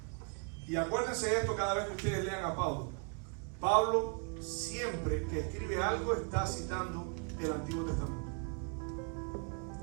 Y acuérdense de esto cada vez que ustedes lean a Pablo. Pablo siempre que escribe algo está citando el Antiguo Testamento.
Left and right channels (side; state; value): left; quieter; 39.2 dB